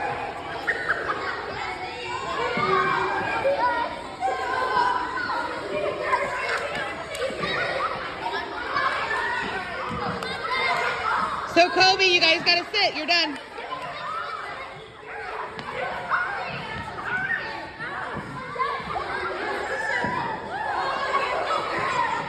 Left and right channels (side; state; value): both; identical; correlation 1.00